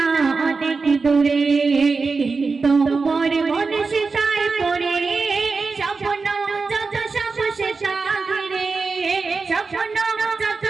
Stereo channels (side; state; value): left; quieter; 4.4 dB